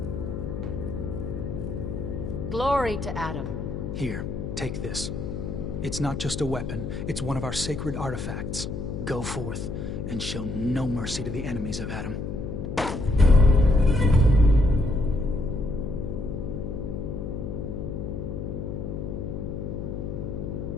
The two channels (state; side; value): noise; left; hum, 5 dB below the sound